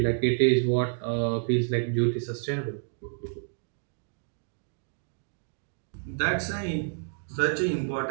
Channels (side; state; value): left; silent; digital silence